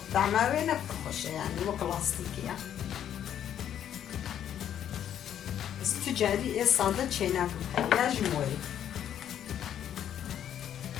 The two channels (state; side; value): quieter; right; 10.0 dB